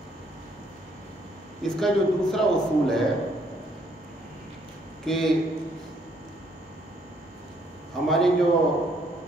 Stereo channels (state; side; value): normal; both; correlation 0.67